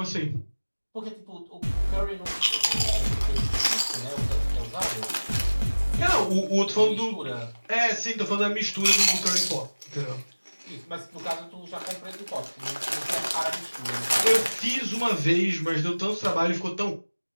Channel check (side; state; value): both; inverted; correlation -1.00